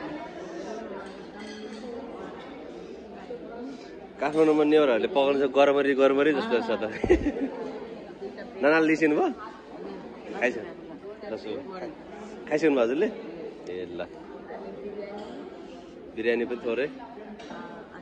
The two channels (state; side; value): identical; both; correlation 1.00